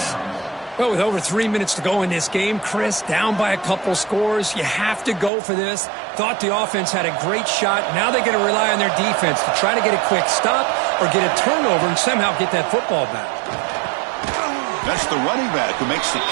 Well, with over 3 minutes to go in this game, Chris, down by a couple scores, you have to go for this. Thought the offense had a great shot. Now they got to rely on their defense to try to get a quick stop or get a turnover and somehow get that football back. That's the running back who makes the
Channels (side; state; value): left; drops out; at 5.3 s